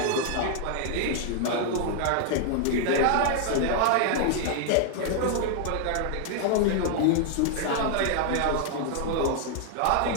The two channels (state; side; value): different; both; correlation 0.00